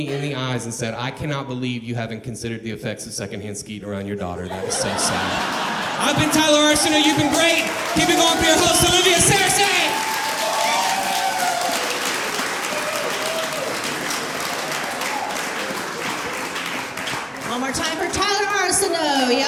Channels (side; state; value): both; identical; correlation 1.00